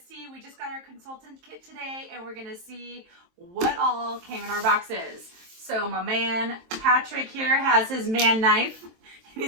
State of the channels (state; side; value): late; left; 23 ms